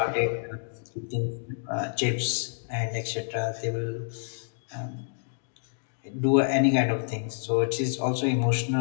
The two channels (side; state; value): right; silent; digital silence